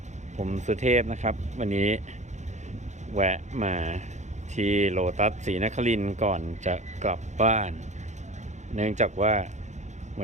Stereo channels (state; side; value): late; left; 0.34 ms